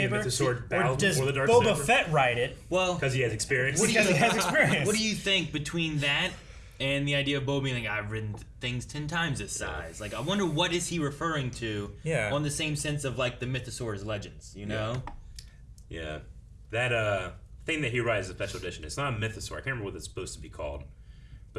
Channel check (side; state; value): both; identical; correlation 1.00